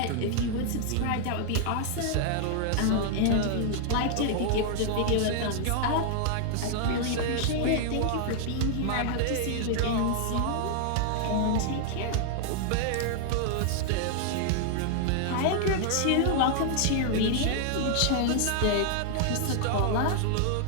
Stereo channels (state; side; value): different; both; correlation 0.00